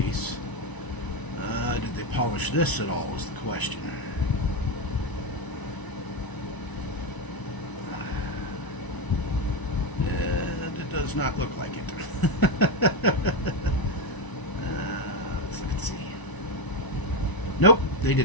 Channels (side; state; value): right; late; 1.0 ms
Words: Did they polish this at all is the question. Does not look like it. Let's see. Nope, they